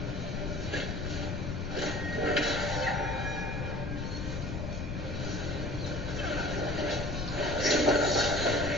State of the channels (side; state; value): left; noise; rumble, 3 dB below the sound